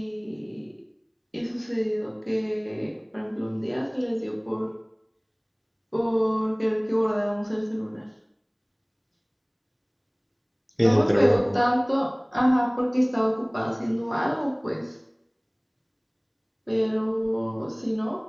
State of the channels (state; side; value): identical; both; correlation 1.00